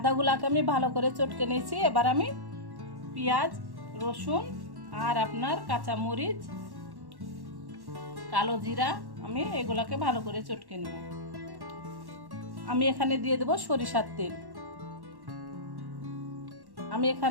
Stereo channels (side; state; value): left; late; 1.1 ms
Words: আমি ভালো করে চটকে নিয়েছি। এবার আমি পেঁয়াজ, রসুন আর আপনার কাঁচা মরিচ, কালো জিরা, আমি এগুলাকে ভালো করে চটকে নেব। আমি এখানে দিয়ে দেব সরিষার তেল। আমি